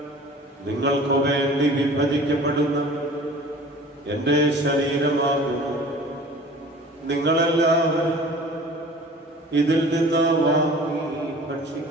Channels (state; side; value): normal; both; correlation 0.44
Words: നിങ്ങൾക്ക് വേണ്ടി വിഭജിക്കപ്പെടുന്ന എന്റെ ശരീരമാകുന്നു. നിങ്ങളെല്ലാവരും ഇതിൽ നിന്ന് വാങ്ങി